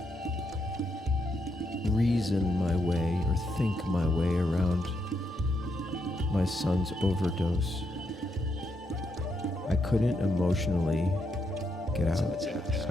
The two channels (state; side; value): normal; both; correlation 0.80